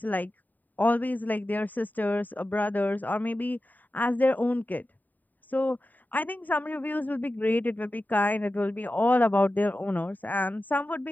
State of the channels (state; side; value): late; right; 0.086 ms